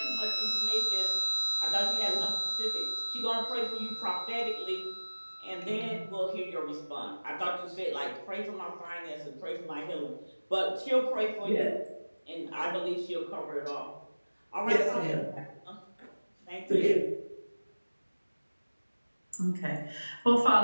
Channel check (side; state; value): both; inverted; correlation -1.00